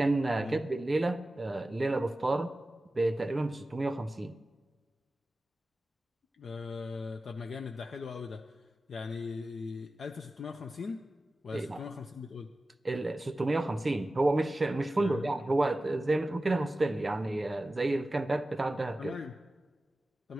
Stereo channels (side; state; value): both; normal; correlation 0.95